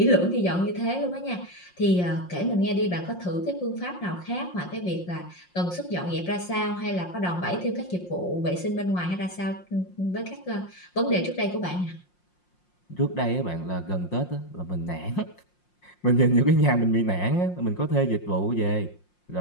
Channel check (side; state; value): right; late; 5.6 ms